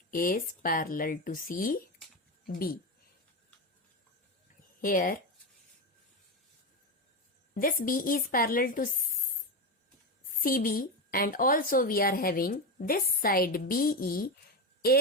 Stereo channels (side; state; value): both; normal; correlation 0.15